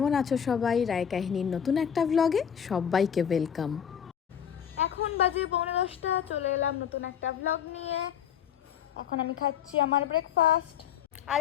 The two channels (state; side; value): quieter; right; 8.5 dB